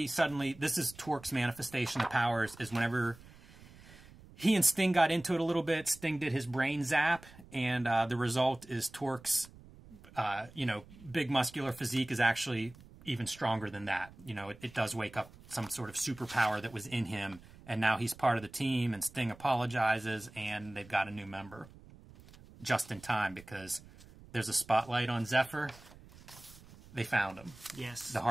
suddenly, this is Torque's manifestation of powers, is whenever he and Sting got into it a little bit, Sting did his brain zap, and the result is Torque's, big muscular physique is actually even stronger than that. It does wake up some sort of superpower that was in him, and now he's part of the team, and Sting apologizes, and they've got a new member. Just in time, because there's a spotlight on Zephyr. They found him. Yes. The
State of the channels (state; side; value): noise; right; rumble, 21 dB below the sound